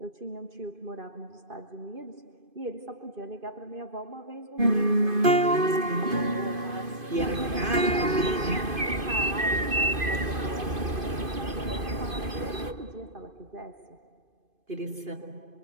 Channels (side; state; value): left; late; 2.5 ms